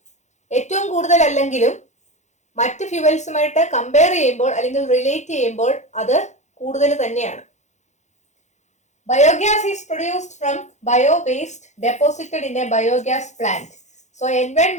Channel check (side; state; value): right; late; 0.34 ms